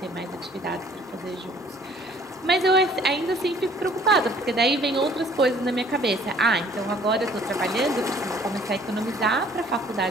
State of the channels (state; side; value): normal; both; correlation 0.56